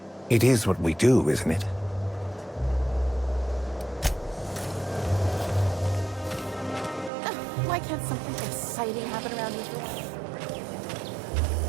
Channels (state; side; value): drops out; left; at 7.1 s